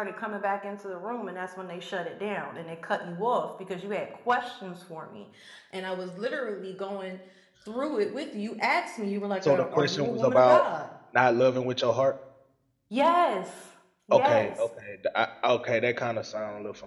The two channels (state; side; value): identical; both; correlation 1.00